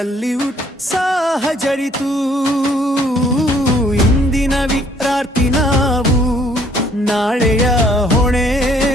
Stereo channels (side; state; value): both; normal; correlation 0.62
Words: ಉತ್ಸಾಹ ಜರಿತು. ಇಂದಿನ ವಿದ್ಯಾರ್ಥಿ ನಾವು, ನಾಳೆಯ ಹೊಣೆ